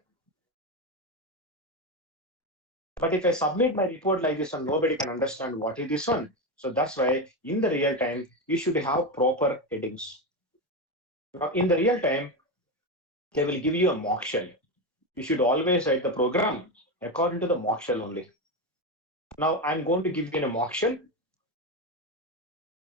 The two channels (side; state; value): both; normal; correlation 0.14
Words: But if I submit my report like this and nobody can understand what is this one, so that's why in the real time, you should have proper headings. Now, in the real time, they will give you a mock shell. You should always write the program according to the mock shell only. Now, I'm going to give you a mock shell.